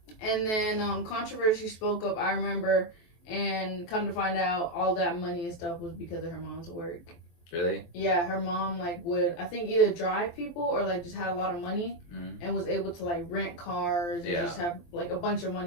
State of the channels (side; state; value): right; late; 23 ms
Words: And then Controversy spoke up, I remember. And come to find out, all that money and stuff was because of her mom's work. Really? Yeah, her mom would, I think, either drive people or just had a lot of money and was able to rent cars and just have a bunch of